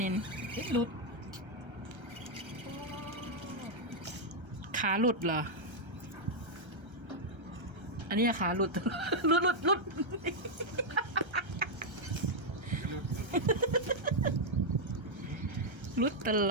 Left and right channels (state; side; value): late; left; 1.3 ms